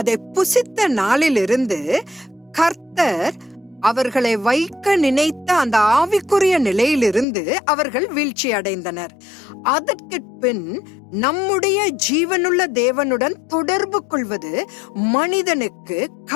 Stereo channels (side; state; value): right; drops out; at 7.2 s